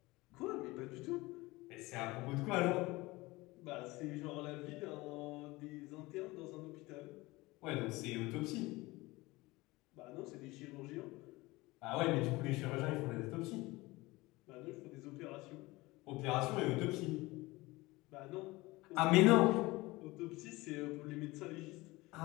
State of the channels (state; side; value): quieter; right; 21.2 dB